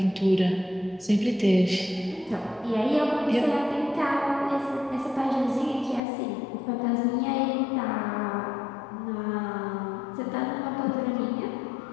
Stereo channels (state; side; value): drops out; right; at 6.0 s